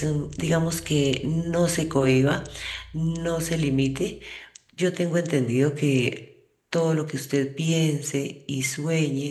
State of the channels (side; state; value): both; identical; correlation 1.00